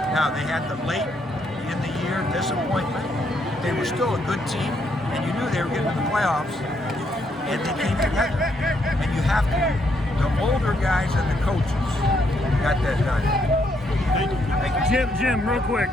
Now, they had the late in the year disappointment. They were still a good team, and you knew they were getting to the playoffs, and they came together. And you have to, the older guys and the coaches got that done. Jim, real quick.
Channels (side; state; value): both; normal; correlation 0.74